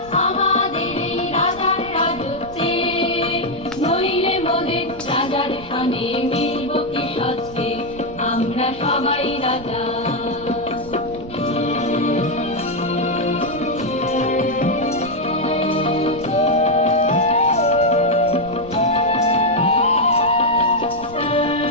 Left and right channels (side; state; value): right; noise; rumble, 17 dB below the sound